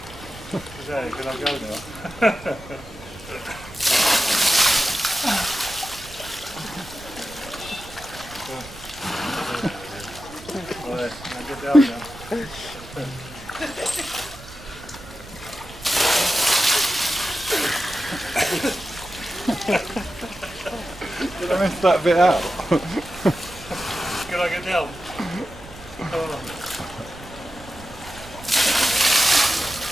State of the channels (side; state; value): right; noise; rumble, 17 dB below the sound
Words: Can I go now? Right, now get down now. Did I miss that bit out? Can I get down?